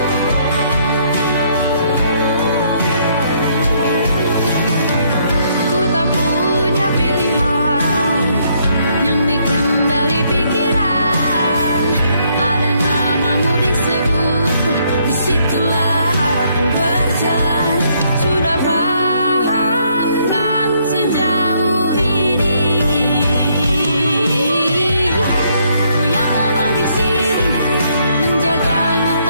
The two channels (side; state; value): both; inverted; correlation -0.70